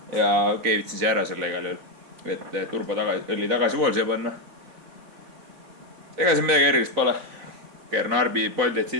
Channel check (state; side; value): late; left; 3.9 ms